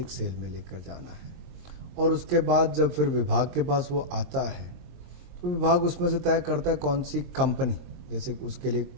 सेल में लेकर जाना है। और उसके बाद जब फिर विभाग के पास वो आता है तो विभाग उसमें से तय करता है कौन सी कंपनी, जैसे उसके लिए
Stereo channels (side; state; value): left; late; 22 ms